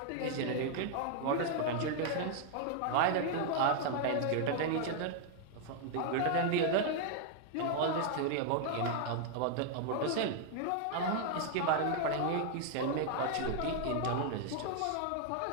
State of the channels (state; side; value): different; both; correlation 0.00